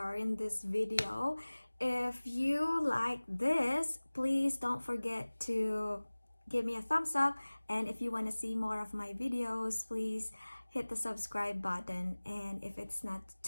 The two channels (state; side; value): inverted; both; correlation -1.00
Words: in this video. If you like this, please don't forget to give me a thumbs up, and if you want to see more of my videos, please hit the subscribe button. And if it's not